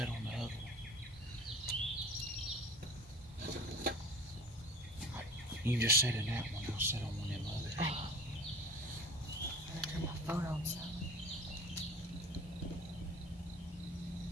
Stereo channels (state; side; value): normal; both; correlation 0.40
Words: on the other one. You just sit in that one. I'll sit on one of them others. Oh. I'm gonna turn my phone on, so.